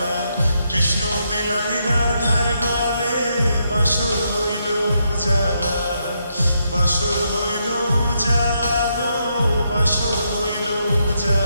কৃষ্ণ দিলাই রাধার গলে, বাসর হইল উজালা, বাসর হইল উজালা গো, বাসর হইল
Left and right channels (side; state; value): both; inverted; correlation -0.79